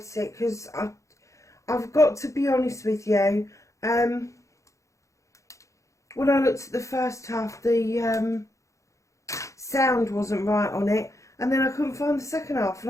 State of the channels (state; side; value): late; right; 0.15 ms